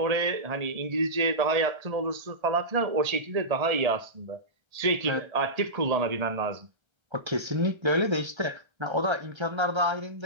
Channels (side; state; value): left; late; 1.3 ms